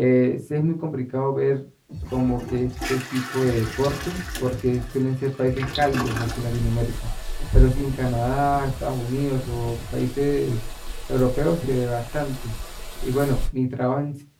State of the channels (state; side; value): identical; both; correlation 1.00